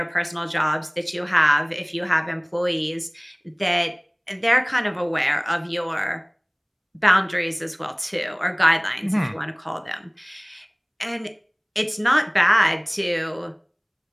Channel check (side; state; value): both; identical; correlation 1.00